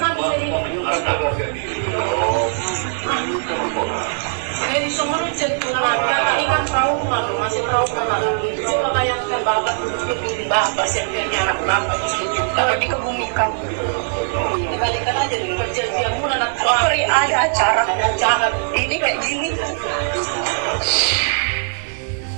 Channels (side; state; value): left; silent; 61 dB below the other